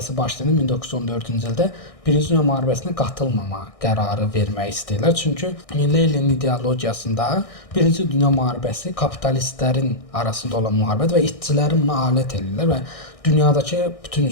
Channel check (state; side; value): late; right; 1.6 ms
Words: başlayanda 1914-cü ildə Birinci Dünya müharibəsinə qatılmama qərarı vermək istəyirlər. Çünki Leninin ideologiyasında Birinci Dünya müharibəsi kapitalistlərin arasında olan müharibədir və işçilərin buna alət edirlər və dünyadakı bütün